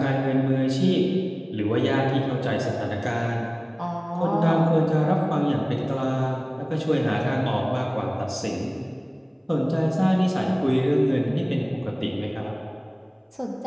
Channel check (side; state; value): both; identical; correlation 1.00